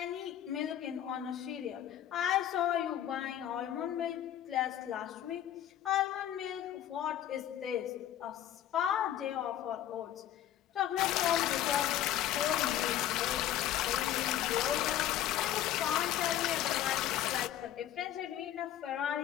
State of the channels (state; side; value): quieter; right; 11.8 dB